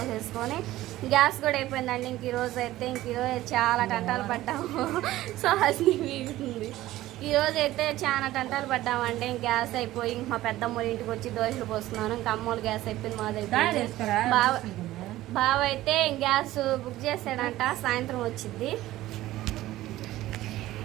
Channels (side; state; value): left; quieter; 15.7 dB